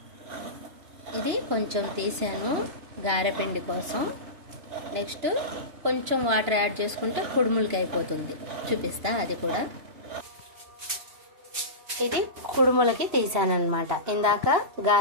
ఇది కొంచెం తీసాను గారెపిండి కోసం. నెక్స్ట్ కొంచెం వాటర్ యాడ్ చేసుకుంటే కుడుములకి అయిపోతుంది. చూపిస్తా అది కూడా. ఇది కుడుములకి తీసానమాట. ఇందాక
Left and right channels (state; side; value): late; left; 2.9 ms